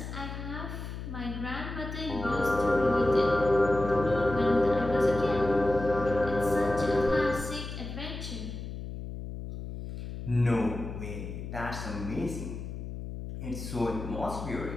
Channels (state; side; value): noise; left; hum, 8 dB below the sound